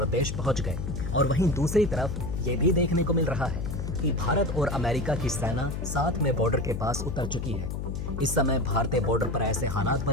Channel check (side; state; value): left; noise; hum, 4 dB below the sound